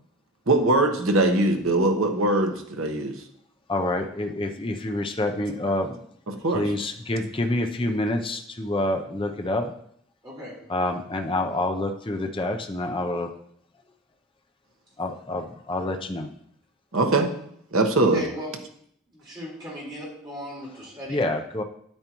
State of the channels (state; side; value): normal; both; correlation 0.32